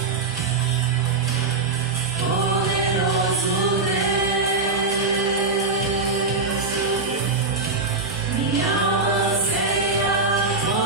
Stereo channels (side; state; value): left; quieter; 3.8 dB